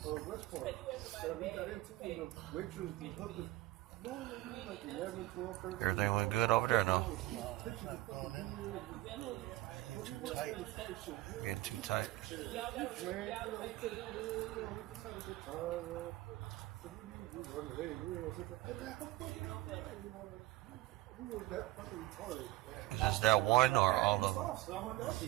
Everything went good over there, no? Too tight. Getting too tight. Is this that one or all of them?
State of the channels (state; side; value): quieter; left; 18.1 dB